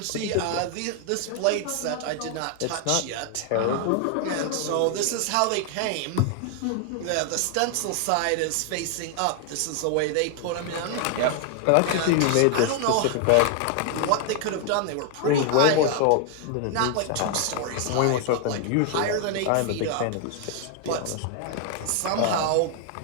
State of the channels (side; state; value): both; different; correlation 0.00